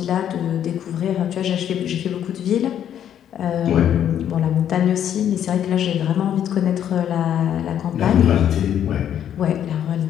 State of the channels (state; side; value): quieter; right; 9.9 dB